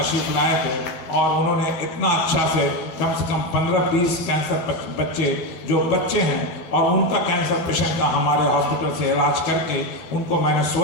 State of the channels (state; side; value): late; right; 12 ms